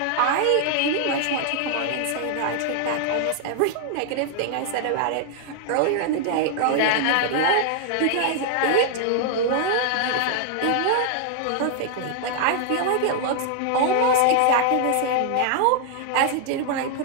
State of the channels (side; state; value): both; different; correlation 0.00